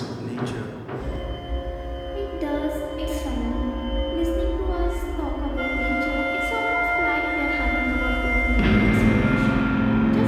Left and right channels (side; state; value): both; identical; correlation 1.00